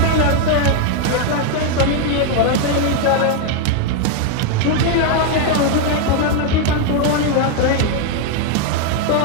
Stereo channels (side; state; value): both; different; correlation 0.01